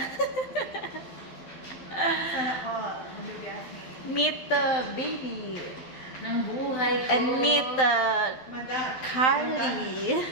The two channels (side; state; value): right; late; 12 ms